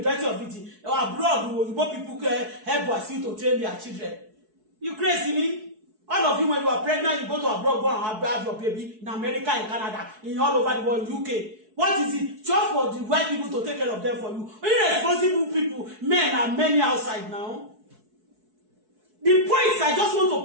of it. Abroad, Igbo people help Wasiu to train their children. You crazy me? All of you, when you are pregnant, you go to abroad, go and have your baby in America, in Canada, in all over the world, UK. What is it? Just for the white people to take care of them for you. Irresponsible people, men are many outside now. The points, I just want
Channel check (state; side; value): late; left; 4.6 ms